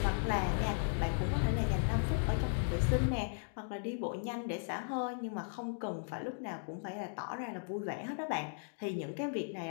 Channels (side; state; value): right; silent; digital silence